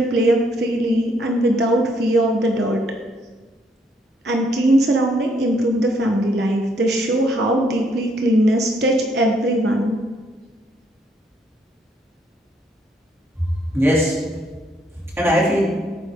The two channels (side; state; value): both; normal; correlation 0.70